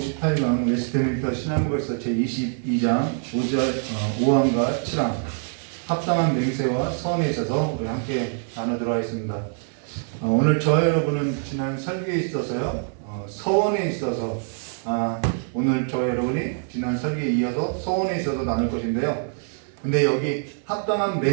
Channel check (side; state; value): left; silent; 57 dB below the other